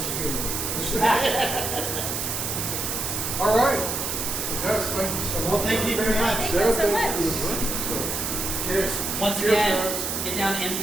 of humor. All right. Yes, thank you so much. Well, thank you very much. Thank you Sarah, so thank you much. for the drink. So, Cheers. Once Cheers, again, guys. get down to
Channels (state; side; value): noise; right; hiss, 2 dB below the sound